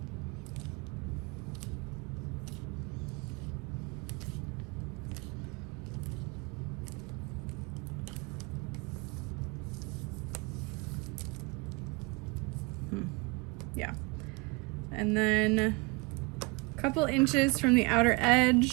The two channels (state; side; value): quieter; left; 27.1 dB